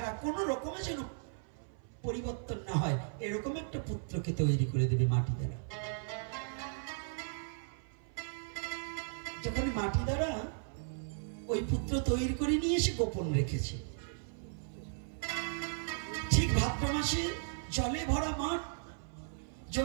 কোন রকমে যেন পরিবর্তন না হয়, এরকম একটা পুত্রকে তৈরি করে দেবে মাটি দ্বারা। যখন মাটি দ্বারা ওই পুত্র তৈরি করে নিয়ে এসে গোপন রেখেছে, ঠিক ভাদ্র মাসে জলে ভরা মাঠ,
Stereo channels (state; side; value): silent; left; 54 dB below the other